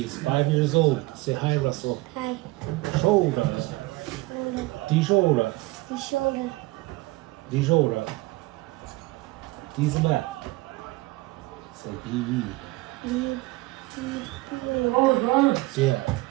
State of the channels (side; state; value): left; quieter; 20.8 dB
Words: 5 years old. Say hi, Russell. Hi. Shoulder. Shoulder. Die shoulder. The shoulder. Die shoulder. Diese back. Say BB. Oh, got it. Yeah.